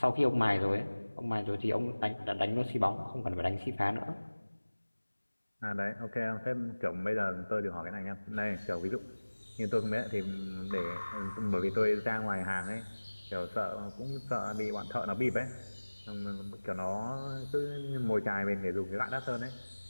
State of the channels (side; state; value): both; inverted; correlation -1.00